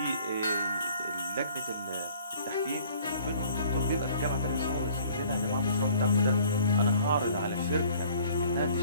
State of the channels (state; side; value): inverted; both; correlation -0.53